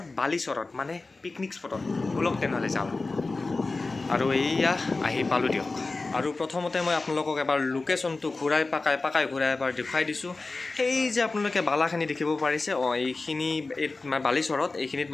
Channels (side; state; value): right; quieter; 3.6 dB